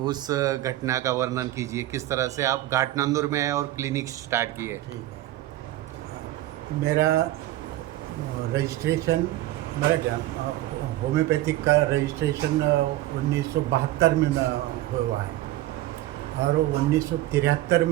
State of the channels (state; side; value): quieter; left; 15.3 dB